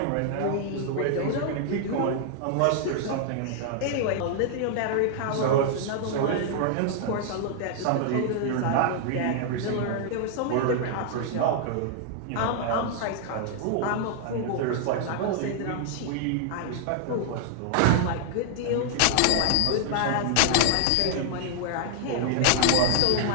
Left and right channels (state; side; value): different; both; correlation -0.01